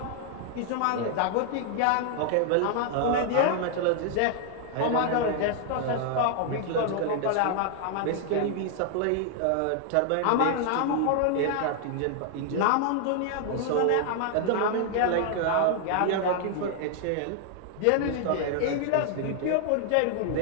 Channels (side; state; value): both; different; correlation -0.01